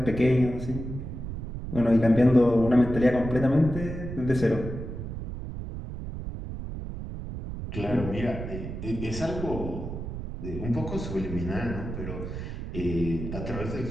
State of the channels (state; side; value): noise; right; rumble, 7 dB below the sound